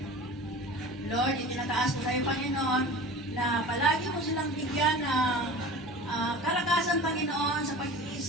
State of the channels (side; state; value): both; normal; correlation 0.37